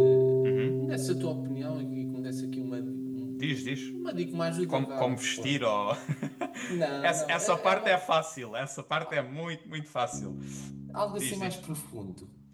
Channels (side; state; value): both; identical; correlation 1.00